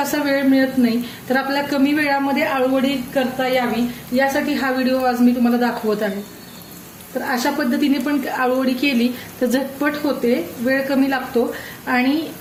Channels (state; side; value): identical; both; correlation 1.00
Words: वेळ मिळत नाही. तर आपल्याला कमी वेळामध्ये आळूवडी करता यावी यासाठी हा व्हिडिओ आज मी तुम्हाला दाखवत आहे. तर अशा पद्धतीने पण आळूवडी केली तर झटपट होते, वेळ कमी लागतो आणि